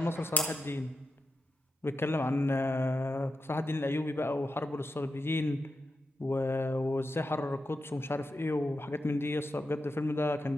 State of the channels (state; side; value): normal; both; correlation 0.87